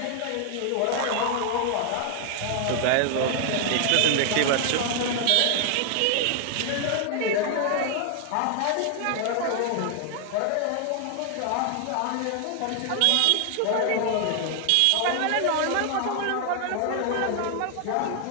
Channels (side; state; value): both; different; correlation 0.00